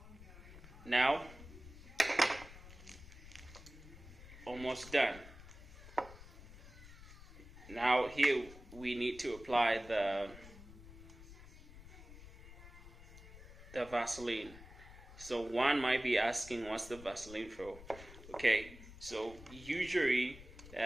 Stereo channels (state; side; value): noise; left; rumble, 16 dB below the sound